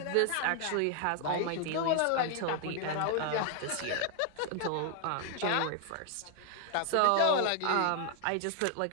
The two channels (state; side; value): different; both; correlation 0.00